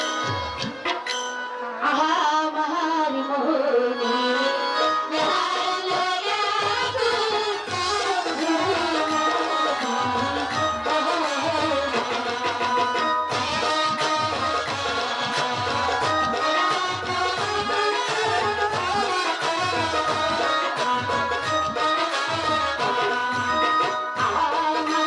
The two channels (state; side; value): identical; both; correlation 1.00